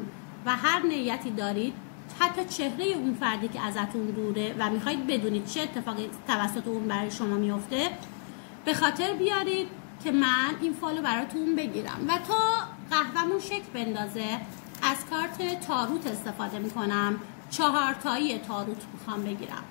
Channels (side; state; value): right; silent; 58 dB below the other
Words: و هر نیتی دارید، حتی چهره اون فردی که ازتون دوره و میخواید بدونید چه اتفاقی توسط اون برای شما میفته، به خاطر بیارید که من این فالو براتون بگیرم. و تا قهوه‌مون شکل بندازه از کارت تاروت استفاده میکنم. 4 تایی تاروت میخوام بگیرم،